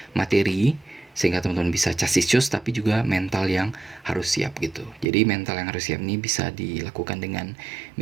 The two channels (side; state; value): left; drops out; at 5.1 s